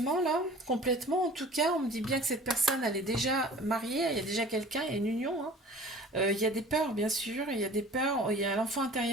là, complètement en tout cas. On me dit bien que cette personne elle est déjà mariée, il y a déjà quelqu'un, il y a une union. Hein. Il y a des peurs bien sûr, il y a des peurs, il y a l'enfant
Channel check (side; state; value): both; normal; correlation 0.44